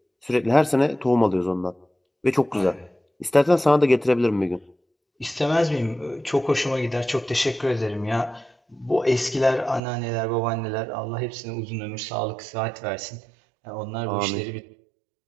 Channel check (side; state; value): left; drops out; at 9.8 s